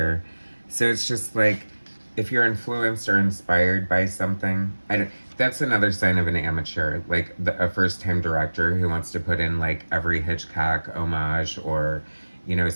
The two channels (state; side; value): inverted; both; correlation -1.00